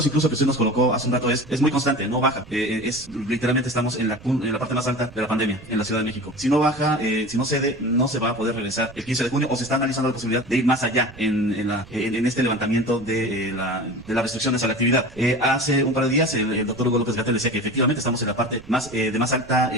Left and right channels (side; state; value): right; noise; rumble, 20 dB below the sound